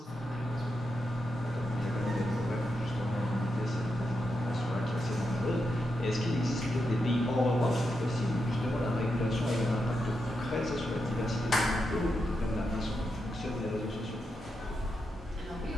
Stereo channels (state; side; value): normal; both; correlation 0.85